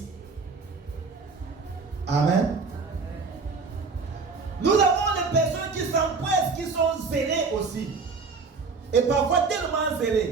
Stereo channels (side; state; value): left; quieter; 4.5 dB